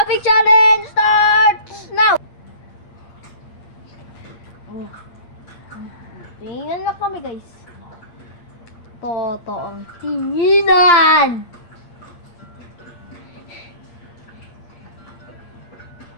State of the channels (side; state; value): right; late; 8.7 ms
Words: challenge starts now! Oh. Tingnan na kami guys. Totoong tinginan!